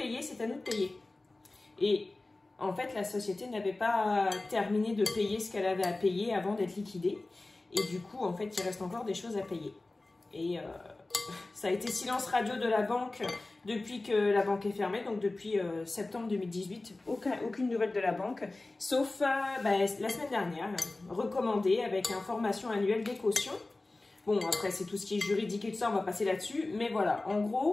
c'est à nous de payer. Et en fait, la société n'avait pas terminé de payer ce qu'elle avait à payer avant d'être liquidée. Et du coup, en fait, il reste encore des choses à payer. Et ça a été silence radio de la banque depuis que la banque est fermée, donc depuis septembre 2018. Aucune nouvelle de la banque, sauf la semaine dernière, recommandée avec information annuelle des cautions. Bon, après, c'est tout ce qui est juridique et tout ça, on va passer là-dessus. Mais voilà, en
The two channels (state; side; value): quieter; right; 3.0 dB